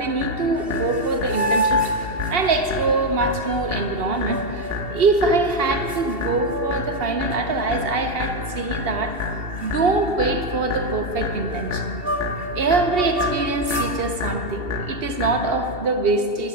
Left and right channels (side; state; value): left; late; 2.7 ms